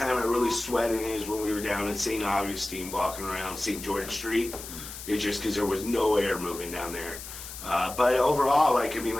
I really sweat in it is when we were down in St. Augustine walking around St. George Street. It's just because there was no air moving down there. But overall, like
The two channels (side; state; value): left; noise; hiss, 11 dB below the sound